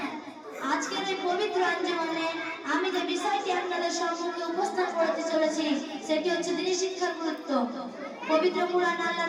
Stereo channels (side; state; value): both; identical; correlation 1.00